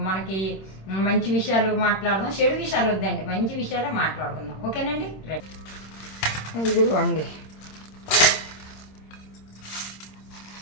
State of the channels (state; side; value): late; right; 26 ms